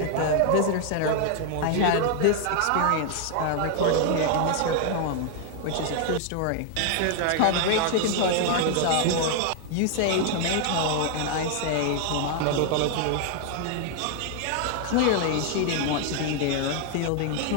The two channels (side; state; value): both; different; correlation 0.00